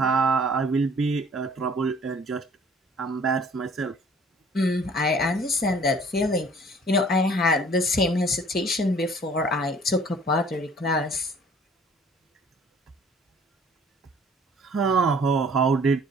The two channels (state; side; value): normal; both; correlation 0.54